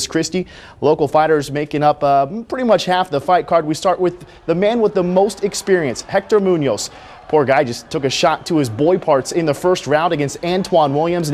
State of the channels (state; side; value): identical; both; correlation 1.00